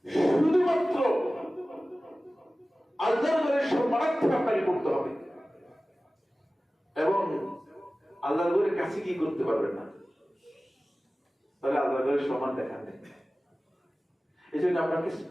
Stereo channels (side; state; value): both; normal; correlation 0.97